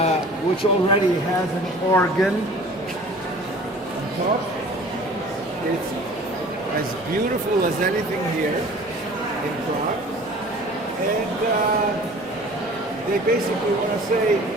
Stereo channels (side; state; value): both; normal; correlation 0.46